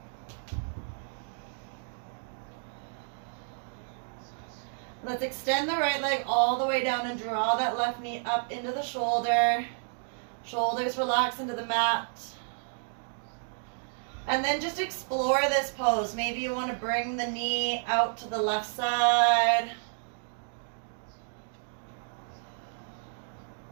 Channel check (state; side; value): silent; left; digital silence